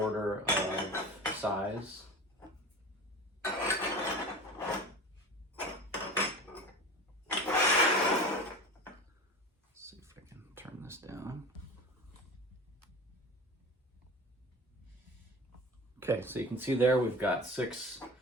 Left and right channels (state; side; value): normal; both; correlation 0.34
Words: of size. Let's see if I can turn this down. Okay, so you can see there we've got 6